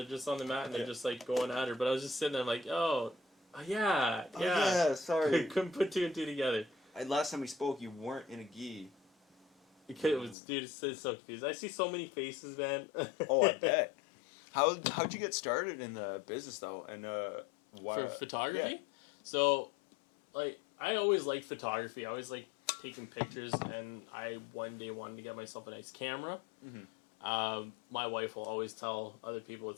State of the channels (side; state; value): right; drops out; at 10.4 s